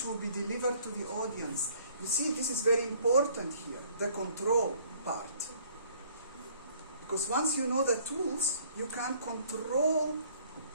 will be delivered to the audience. You see, this is very important here, the control part. Because once you know the tools, you can control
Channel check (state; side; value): inverted; both; correlation -0.59